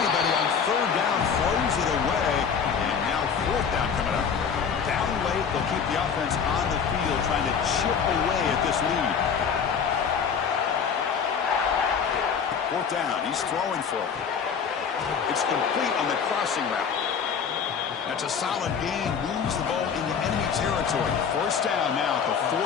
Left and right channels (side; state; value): right; quieter; 6.7 dB